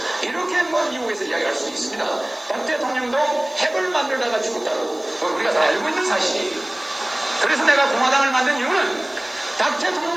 이렇게 뭐 미국에서 이야기할 수도 있습니다. 박 대통령도 핵을 만들다가 죽었다고 우리가 다 알고 있는 사실이에요. 그래서 내가 공화당을 만든 이유는 박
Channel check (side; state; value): right; noise; hiss, 29 dB below the sound